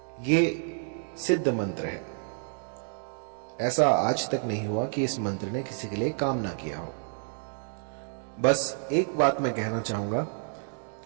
ये सिद्ध मंत्र है। ऐसा आज तक नहीं हुआ कि इस मंत्र ने किसी के लिए काम ना किया हो। बस एक बात मैं कहना चाहूंगा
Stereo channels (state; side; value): silent; left; 58 dB below the other